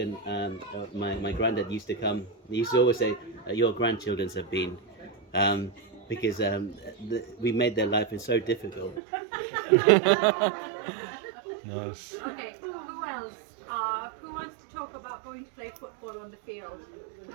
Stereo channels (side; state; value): left; drops out; at 9.0 s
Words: my granddad used to come, he used to always say, "Your grandchildren have been," because we made their life so difficult. Nice. Okay, who else? Who wants to talk about going to play football on the field?